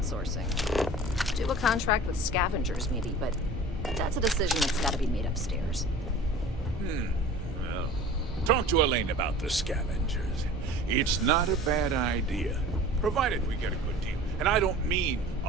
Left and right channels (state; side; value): normal; both; correlation 0.42